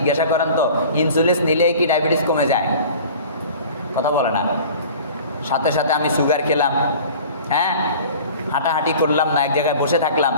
করেন তো ইনসুলিন নিলে কি ডায়াবেটিস কমে যায়? কথা বলে না। সাথে সাথে আমি সুগার খেলাম, হ্যাঁ, হাঁটাহাঁটি করলাম না, এক জায়গায় বসে থাকলাম,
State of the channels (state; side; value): inverted; both; correlation -0.43